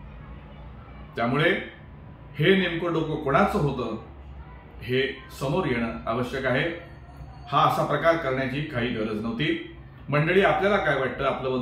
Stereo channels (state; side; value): identical; both; correlation 1.00